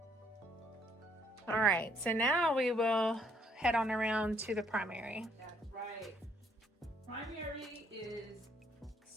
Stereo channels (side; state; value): both; normal; correlation 0.67